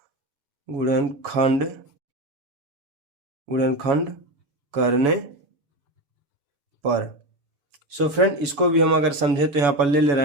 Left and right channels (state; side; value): late; left; 7.1 ms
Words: गुणनखंड गुणनखंड करने पर। सो फ्रेंड, इसको भी हम अगर समझे तो यहाँ पर ले रहे